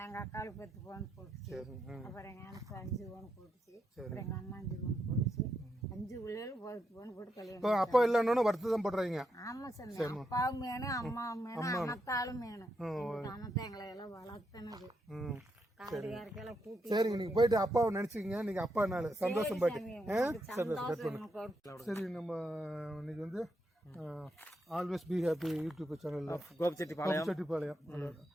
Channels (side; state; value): both; normal; correlation 0.82